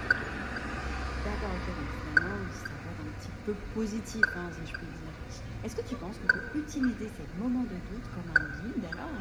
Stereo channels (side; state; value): both; identical; correlation 1.00